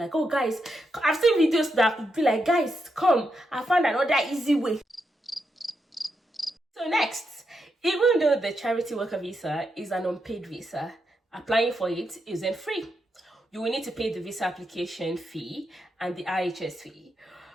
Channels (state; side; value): normal; both; correlation 0.83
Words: oh guys, I've seen videos that would be like, guys, come, I found another easy way. So next, even though the charity worker visa is an unpaid visa, applying for it isn't free. You will need to pay the visa application fee and the IHS fee.